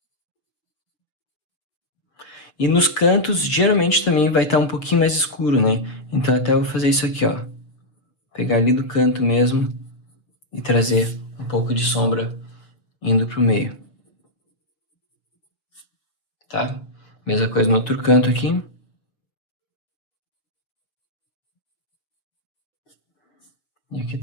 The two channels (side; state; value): right; late; 6.5 ms